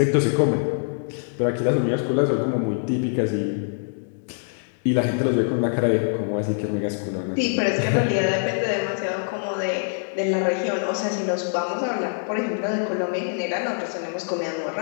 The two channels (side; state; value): right; silent; digital silence